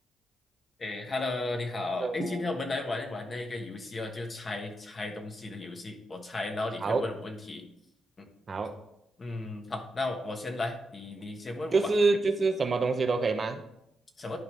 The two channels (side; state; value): both; normal; correlation 0.86